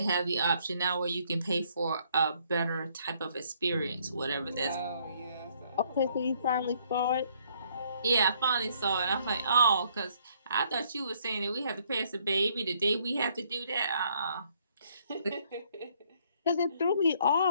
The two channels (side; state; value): both; inverted; correlation -0.66